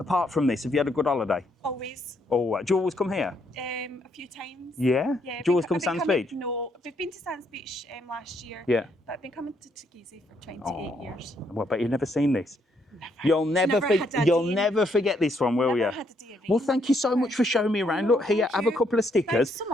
from this, have you had a good holiday? Always. Oh, do you always come here? A few times. Yeah. Yeah. Do you always I've come been Sands coming- Beach? No, we've been to Sands Beach last year. Yeah. But I've been coming to Teguise for 28 Oh, years. well, but you've never seen this. You'll never, Never had a you'll day in- never forget this one, will Never you? had a day of Well, rain. thank you so much for showing me around. No, Look here, thank have a you. couple of stickers, Thanks so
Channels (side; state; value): both; normal; correlation 0.73